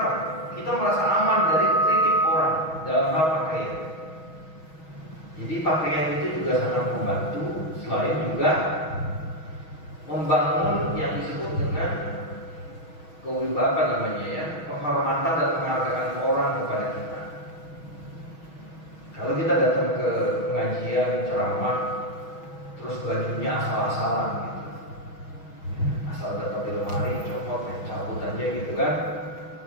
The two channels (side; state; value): right; late; 6.2 ms